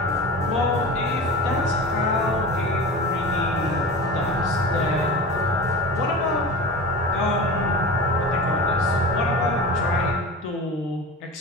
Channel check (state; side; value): normal; both; correlation 0.31